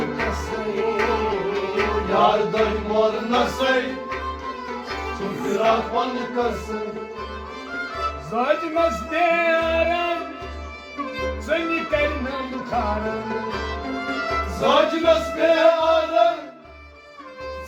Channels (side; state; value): both; identical; correlation 1.00